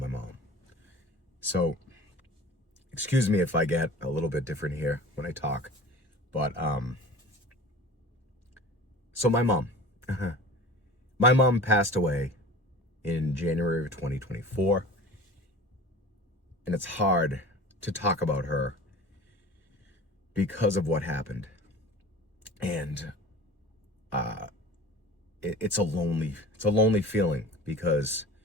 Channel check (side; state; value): both; normal; correlation 0.40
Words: mom. So, excuse me if I get a little bit different here when I talk. But, so my mom, my mom passed away in January of 2024. And it's hard to talk about her because of what happened. And it's a lonely feeling because